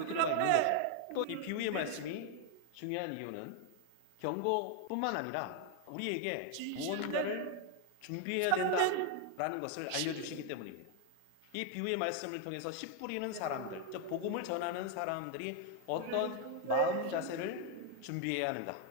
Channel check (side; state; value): both; different; correlation 0.00